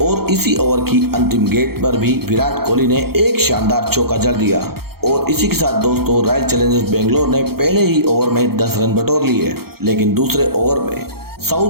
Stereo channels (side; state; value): left; late; 0.95 ms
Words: और इसी ओवर की अंतिम गेंद पर भी विराट कोहली ने एक शानदार चौका जड़ दिया और इसी के साथ दोस्तों रॉयल चैलेंजर्स बेंगलोर ने पहले ही ओवर में 10 रन बटोर लिए, लेकिन दूसरे ओवर में